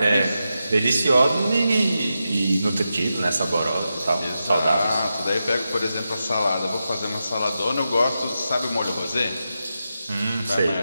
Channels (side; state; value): both; inverted; correlation -0.89